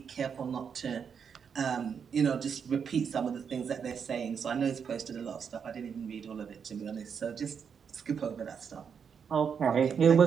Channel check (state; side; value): quieter; left; 6.9 dB